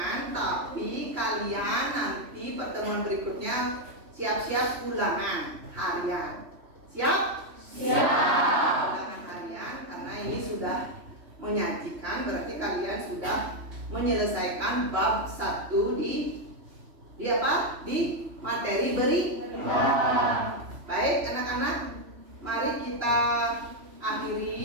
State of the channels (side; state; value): left; late; 3.1 ms